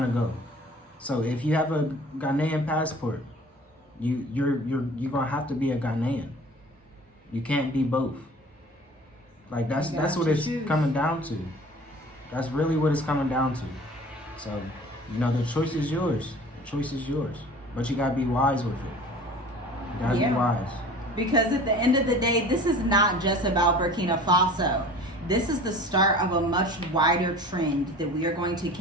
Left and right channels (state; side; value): normal; both; correlation 0.44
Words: to go. So if you have a Ghanaian passport, you're gonna have to be a Ghanaian. You can't be both. Like that's what it's coming down to. That's really what it's coming down to. So, you know, the choice is yours. Choice is yours, but you gotta be wise with it. You gotta be wise. Because at the end of the day, this is not just about Burkina Faso. This is the start of a much wider trend that we are going to